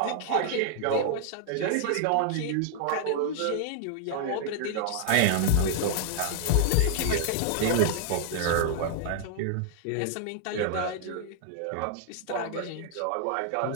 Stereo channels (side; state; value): both; different; correlation 0.00